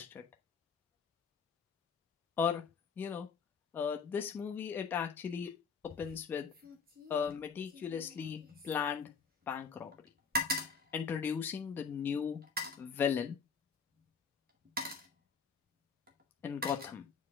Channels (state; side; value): quieter; right; 5.5 dB